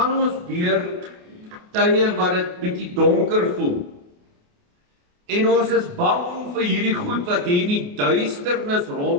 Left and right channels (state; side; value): late; left; 28 ms